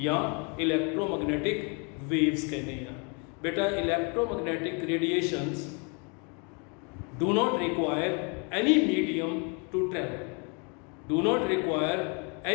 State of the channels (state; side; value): quieter; right; 34.6 dB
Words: ਜਾਂ ਇਲੈਕਟ੍ਰੋਮੈਗਨੈਟਿਕ वेव्स कहते हैं। बेटा electromagnetic radiations do not require any medium to travel, do not require